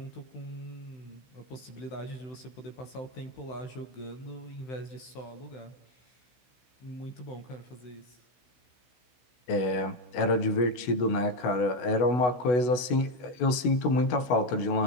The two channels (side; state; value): right; late; 16 ms